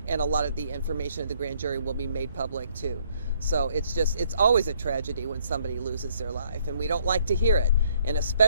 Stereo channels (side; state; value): both; inverted; correlation -0.65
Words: and a lot of the information of the grand jury will be made public too. So it's always a tragedy when somebody loses their life, and we don't like to hear it, and